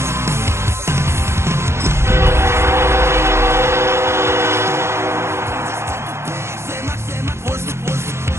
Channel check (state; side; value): late; left; 0.13 ms